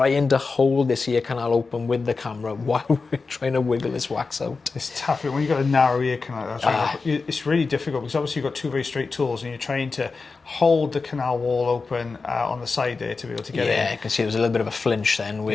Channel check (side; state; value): right; quieter; 4.3 dB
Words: to hold this ear canal open with the camera while we're trying to wiggle this wax out. It's tough when you've got a narrow ear canal. It's really difficult, because obviously you've got two very straight tools and you're trying to hold the canal wall open on the side there to be able to get in. Yeah, you can see there's a little bit of a flinch then